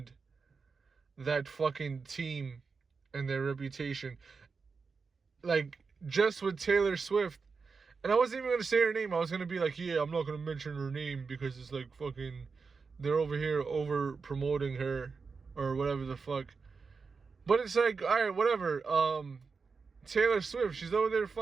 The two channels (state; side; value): quieter; left; 4.9 dB